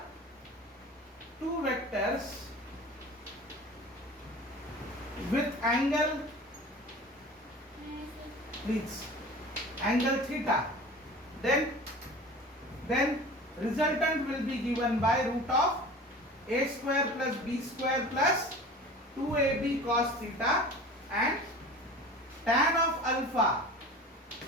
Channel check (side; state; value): both; normal; correlation 0.39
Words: two vectors with angle, please, angle theta, then resultant will be given by root of a square plus b square plus 2ab cos theta, and tan of alpha,